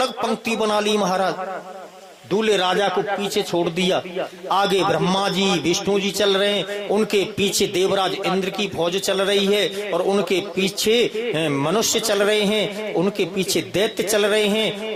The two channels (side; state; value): both; identical; correlation 1.00